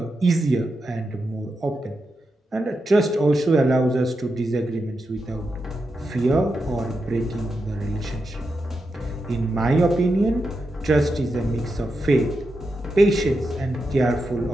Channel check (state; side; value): normal; both; correlation 0.87